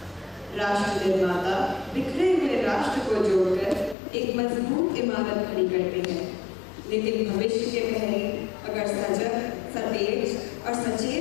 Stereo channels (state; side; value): drops out; right; at 4.0 s